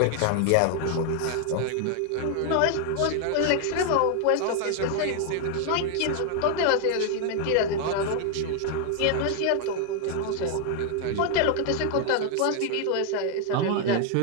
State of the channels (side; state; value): both; different; correlation 0.00